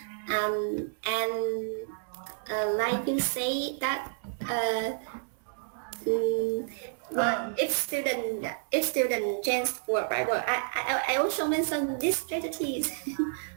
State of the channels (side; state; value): left; silent; 58 dB below the other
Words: and like you say that if student change word by word, I also mentioned these strategies.